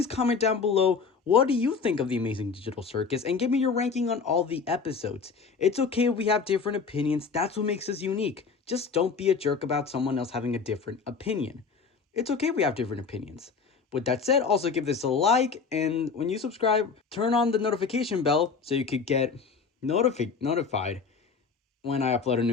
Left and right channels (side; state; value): right; quieter; 5.3 dB